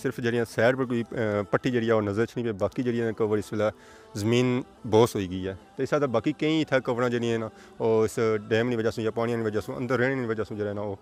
सिर्फ जेह्ड़ियां साइड पर कोई पट्टी जेह्ड़ी है ओह् नज़र रखनी पे बाकी जेह्ड़ियां कवर इस वेल्ले ज़मीन बोस होई गई है तो इस बाकी केईं इत्थै कबरां जेह्ड़ियां न ओह् इस डैम दी वजह से या पानी दी वजह से अंदर रहने दी वजह से जेह्ड़ा ना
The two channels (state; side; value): identical; both; correlation 1.00